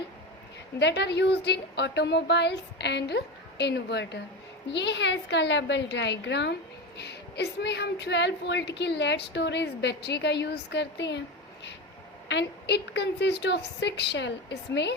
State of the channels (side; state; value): both; normal; correlation 0.22